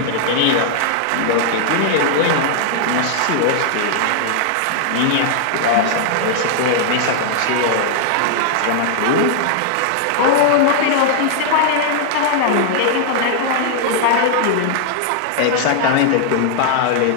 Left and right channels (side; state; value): both; different; correlation -0.01